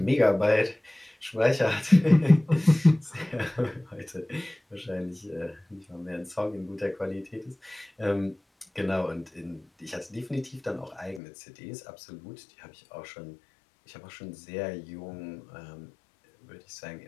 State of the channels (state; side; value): drops out; right; at 11.2 s